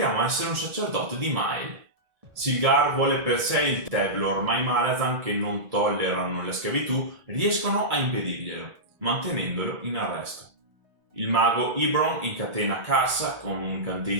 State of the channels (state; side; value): late; left; 1.6 ms